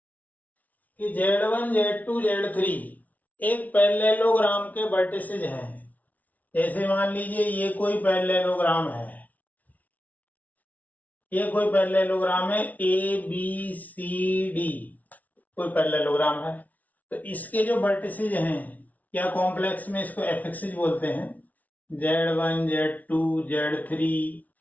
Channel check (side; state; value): right; late; 0.074 ms